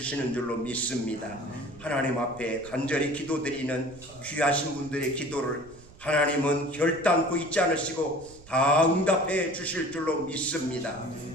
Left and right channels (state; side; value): noise; right; rumble, 21 dB below the sound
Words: 줄로 믿습니다. 하나님 앞에 간절히 기도드리는 귀하신 분들의 기도를 하나님은 결단코 잊지 않으시고 다 응답해 주실 줄로 믿습니다.